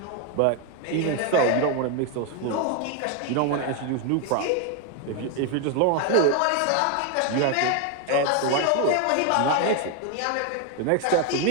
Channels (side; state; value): both; different; correlation 0.01